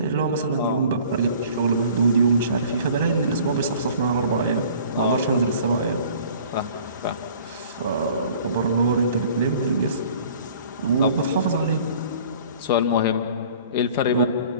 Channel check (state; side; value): inverted; both; correlation -0.49